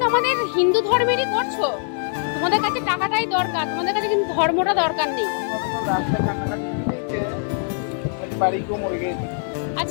আমাদের হিন্দু ধর্মেরই করছো। তোমাদের কাছে টাকাটাই দরকার, তোমাদের কাছে কিন্তু ধর্মটা দরকার নেই।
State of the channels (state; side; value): silent; right; 60 dB below the other